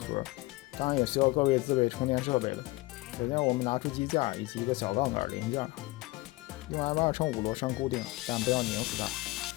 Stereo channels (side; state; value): right; quieter; 21.1 dB